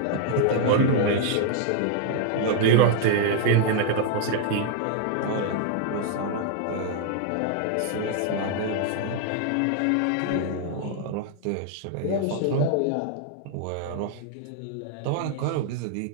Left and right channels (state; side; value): different; both; correlation -0.01